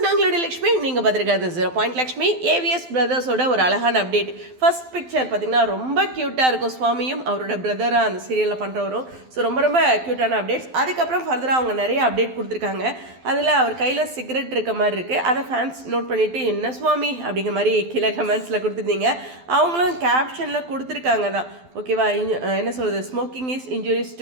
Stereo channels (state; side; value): late; left; 12 ms